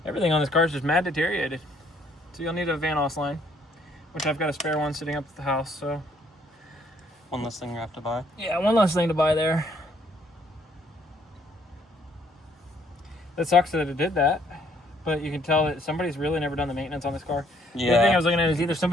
Everything on this car is just mad deteriorated. So you'll need a van os line, which I've got a spare one sitting up at the house, so. One less thing you have to buy. Yeah, one less thing to buy there. It sucks that it did that, but you can tell that somebody's really never done the maintenance on this car. Yeah. The other thing I was looking at is either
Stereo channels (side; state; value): both; normal; correlation 0.66